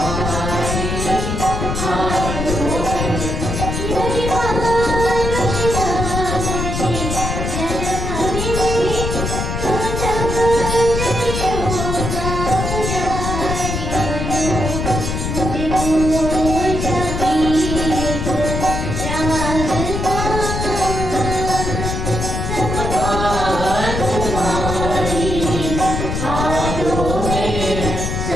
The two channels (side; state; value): left; noise; rumble, 2 dB below the sound